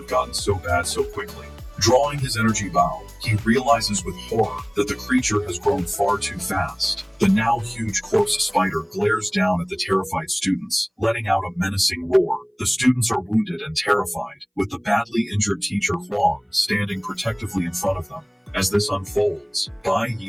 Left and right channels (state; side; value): identical; both; correlation 1.00